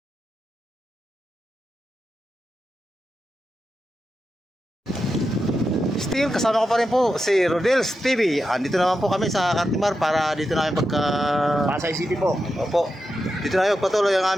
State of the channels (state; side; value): normal; both; correlation 0.89